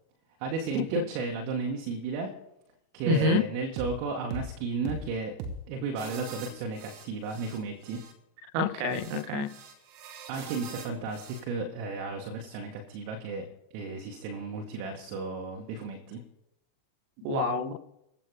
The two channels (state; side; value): late; left; 37 ms